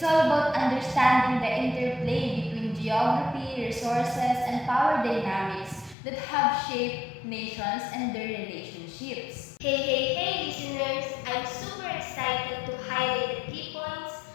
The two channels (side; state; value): right; drops out; at 6.0 s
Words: all about understanding the interplay between geography, resources, and power dynamics that have shaped nations and their relationships. Hey, listeners! I'm super excited to highlight the key points